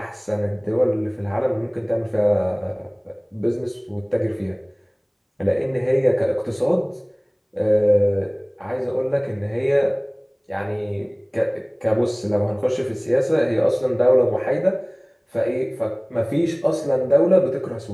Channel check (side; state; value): both; identical; correlation 1.00